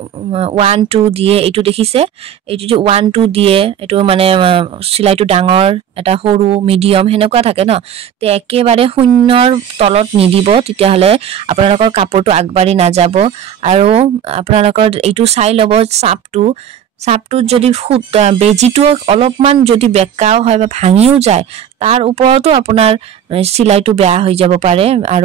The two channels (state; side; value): quieter; left; 9.3 dB